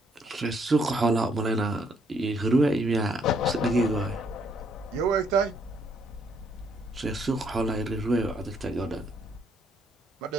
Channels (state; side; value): normal; both; correlation 0.70